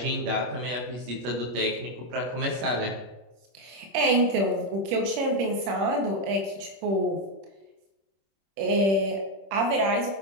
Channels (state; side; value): late; left; 26 ms